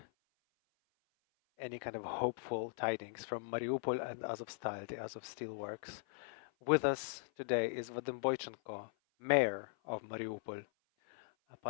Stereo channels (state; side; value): silent; right; 51 dB below the other